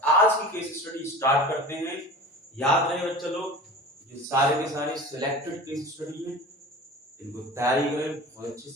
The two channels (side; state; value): both; normal; correlation 0.37